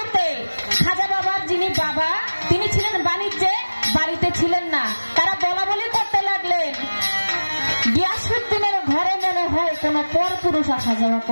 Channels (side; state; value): both; inverted; correlation -1.00